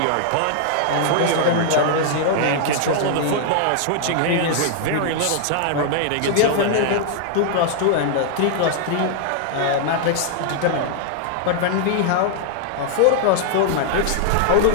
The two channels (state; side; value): different; both; correlation -0.01